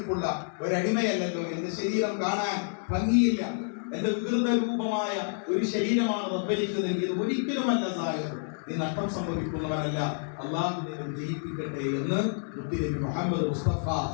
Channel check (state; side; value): silent; right; digital silence